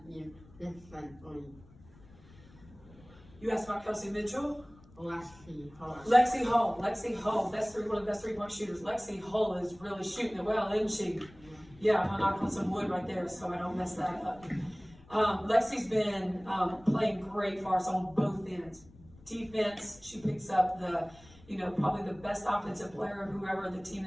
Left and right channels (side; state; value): left; noise; rumble, 24 dB below the sound